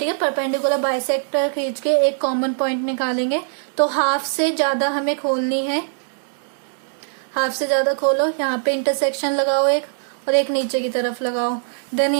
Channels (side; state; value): left; silent; digital silence